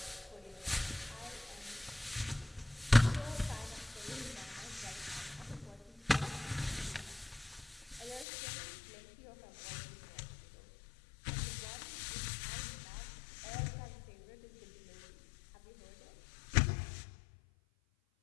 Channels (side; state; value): right; drops out; at 8.2 s